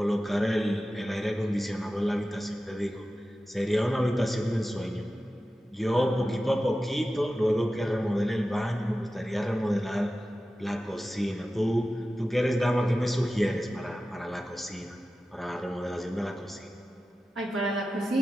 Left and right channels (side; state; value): both; normal; correlation 0.94